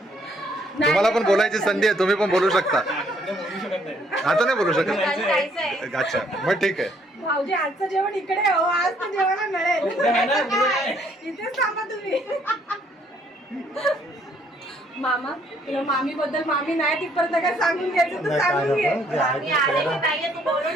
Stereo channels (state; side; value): normal; both; correlation 0.66